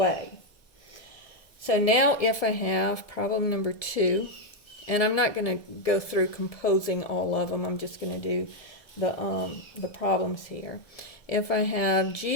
So now if I have problem number 2, and I'm not going to go through composing all of them, I'm just going to do the problems here. If I have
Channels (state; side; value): late; right; 1.7 ms